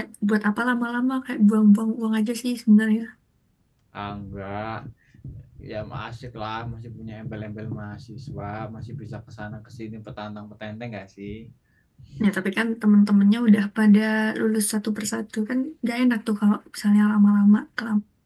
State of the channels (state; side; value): identical; both; correlation 1.00